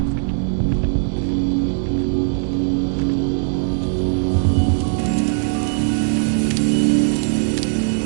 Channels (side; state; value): left; silent; 66 dB below the other